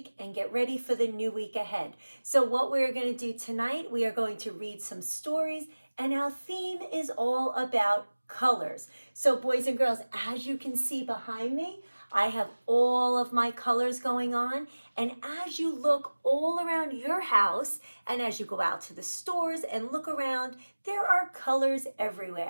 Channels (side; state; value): both; inverted; correlation -1.00